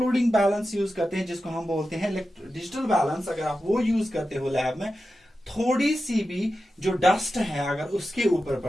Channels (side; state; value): both; normal; correlation 0.92